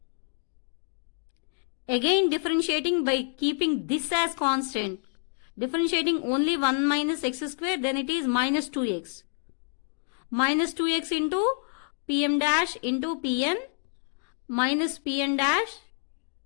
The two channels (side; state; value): right; silent; 59 dB below the other